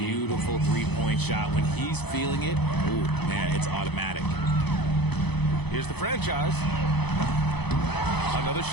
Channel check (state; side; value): late; right; 0.98 ms